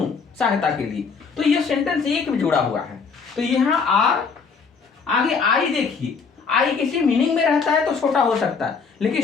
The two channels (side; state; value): right; quieter; 5.3 dB